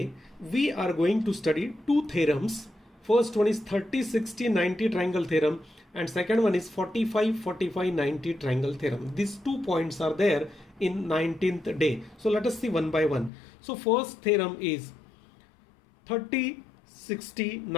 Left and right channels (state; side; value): drops out; right; at 13.3 s